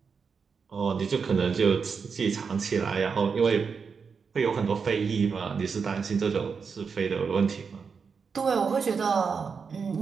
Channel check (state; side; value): quieter; left; 5.7 dB